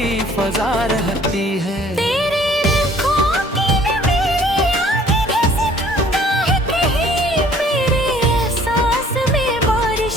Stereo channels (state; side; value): normal; both; correlation 0.56